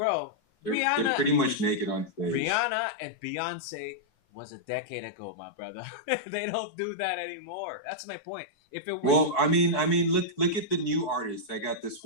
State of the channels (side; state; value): right; late; 4.6 ms